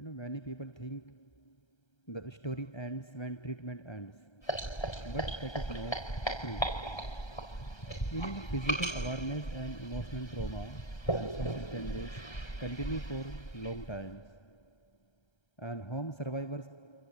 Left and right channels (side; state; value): right; late; 1.3 ms